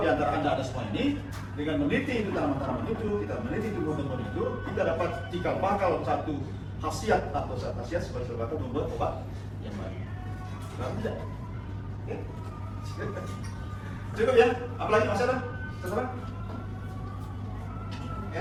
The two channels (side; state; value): both; identical; correlation 1.00